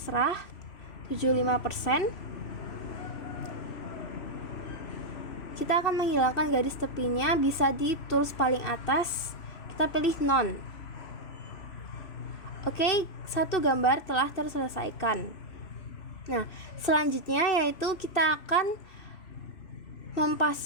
75%. Kita akan menghilangkan garis tepinya, bisa di tools paling atas, kita pilih none. Oke, satu gambar telah terselesaikan. Nah, selanjutnya yaitu kita akan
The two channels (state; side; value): late; right; 3.0 ms